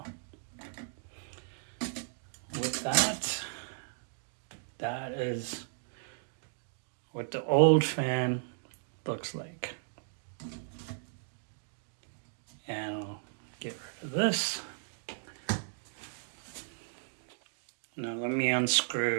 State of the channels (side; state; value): left; silent; digital silence